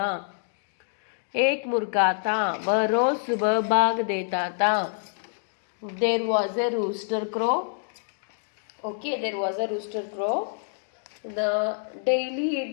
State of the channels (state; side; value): silent; right; digital silence